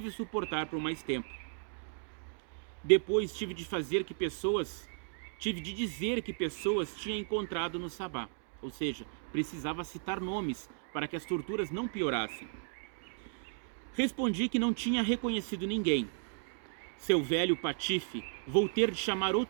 suportar por mais tempo. Depois tive de dizer que pessoas tinha encontrado no sabá, ou seja, precisava citar nomes para que as torturas não piorassem. Respondi que não tinha reconhecido ninguém. Seu velho patife, vou ter de chamar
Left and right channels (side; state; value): left; silent; digital silence